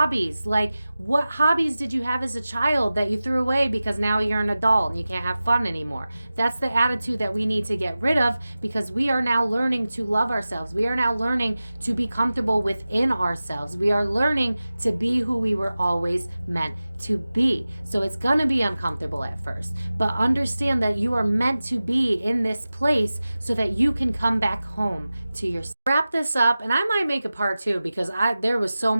like what hobbies did you have as a child that you threw away because now you're an adult and you can't have fun anymore? That's the attitude that we need to get rid of, because we are now learning to love ourselves. We are now learning to be comfortable within ourselves. We are learning to be who we were always meant to be. So it's going to be uncomfortable at first, but understand that you are meant to be in this place so that you can come back home to yourself. Wrap this up, and I might make a part 2 because there was so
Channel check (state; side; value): inverted; both; correlation -0.96